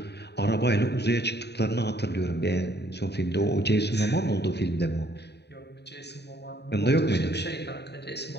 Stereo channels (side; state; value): right; late; 0.49 ms